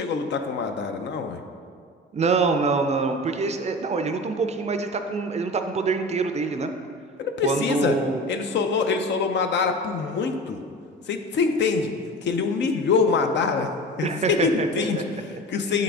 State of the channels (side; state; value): both; normal; correlation 0.34